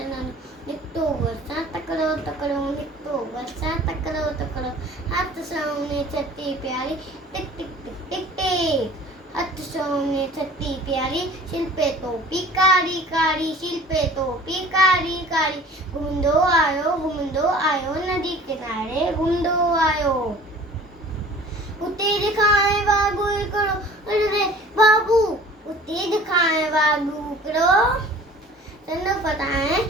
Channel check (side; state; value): both; normal; correlation 0.47